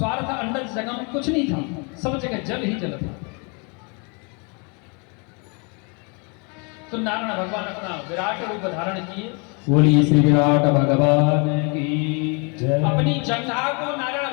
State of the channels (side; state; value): right; quieter; 34.0 dB